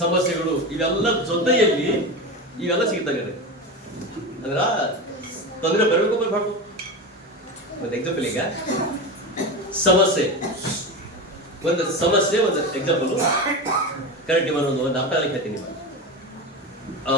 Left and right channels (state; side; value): normal; both; correlation 0.22